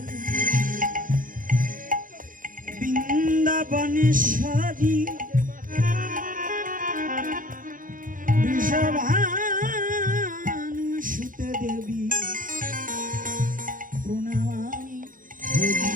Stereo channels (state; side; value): late; left; 0.40 ms